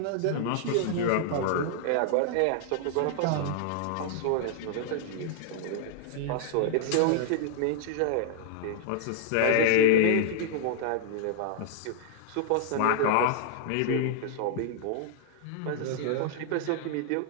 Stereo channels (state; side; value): different; both; correlation -0.01